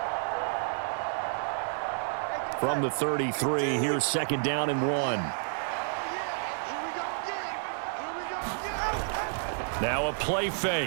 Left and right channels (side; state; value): left; silent; digital silence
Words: From the 33, here's 2nd down and 1. Now a play